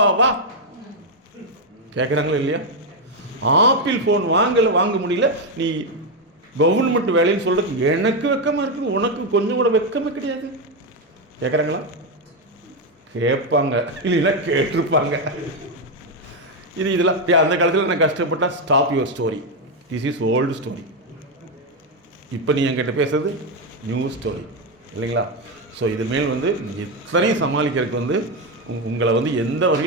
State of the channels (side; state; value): both; normal; correlation 0.06